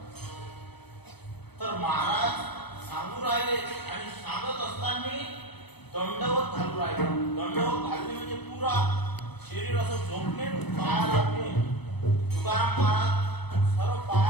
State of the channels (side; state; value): right; late; 0.98 ms